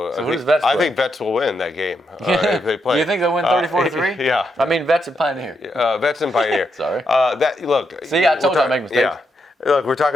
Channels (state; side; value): normal; both; correlation 0.81